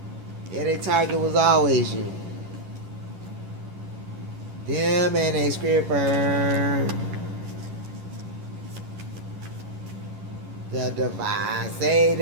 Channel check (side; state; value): left; late; 11 ms